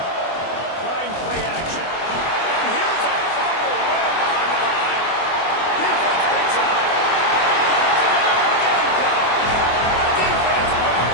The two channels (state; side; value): late; right; 24 ms